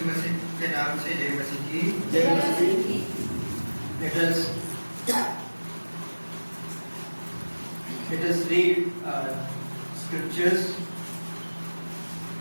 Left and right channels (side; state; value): both; inverted; correlation -1.00